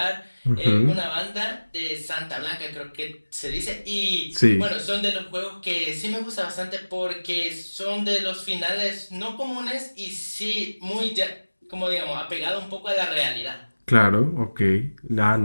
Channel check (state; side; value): inverted; both; correlation -1.00